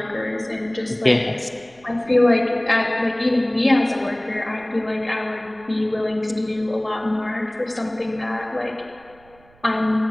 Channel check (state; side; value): noise; right; rumble, 28 dB below the sound